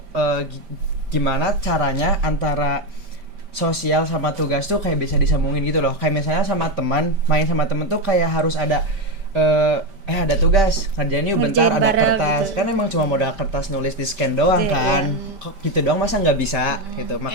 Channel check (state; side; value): late; left; 5.1 ms